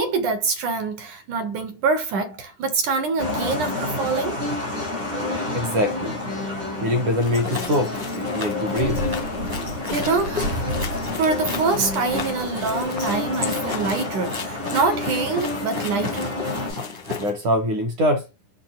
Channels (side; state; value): left; late; 9.9 ms